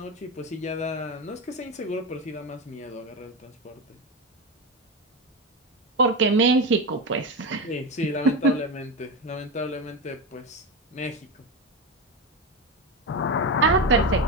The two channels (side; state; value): both; normal; correlation 0.17